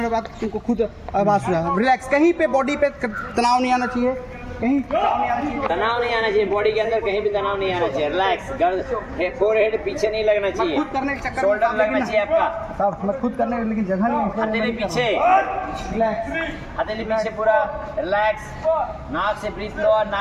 बाद तुमको खुद आवाज़ सुना। रिलैक्स, कहीं पे बॉडी पे तनाव नहीं आना चाहिए, कहीं तनाव नहीं आना चाहिए, बॉडी के अंदर कहीं भी तनाव नहीं आना चाहिए। रिलैक्स, फोरहेड पीछे नहीं लगना चाहिए, खुद करने के चक्कर शोल्डर लगना चाहिए आपका। सब मैं खुद करने, लेकिन जगह नहीं है। हथेली पीछे, रिलैक्स, हथेली पीछे पूरा रिलैक्स। नाक से ब्रीथ लो और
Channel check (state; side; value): identical; both; correlation 1.00